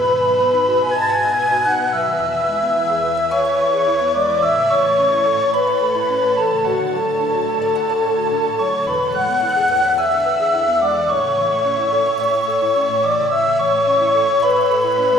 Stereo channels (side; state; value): both; normal; correlation 0.65